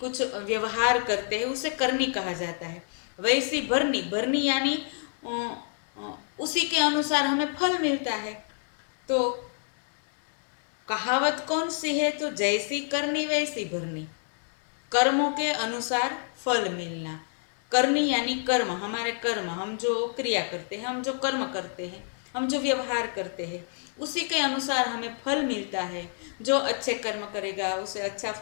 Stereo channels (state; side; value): silent; right; 58 dB below the other